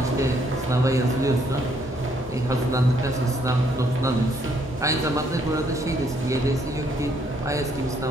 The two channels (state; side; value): normal; both; correlation 0.69